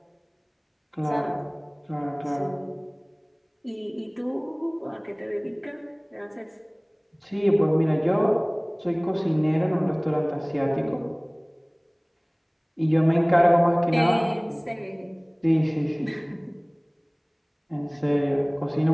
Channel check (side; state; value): both; identical; correlation 1.00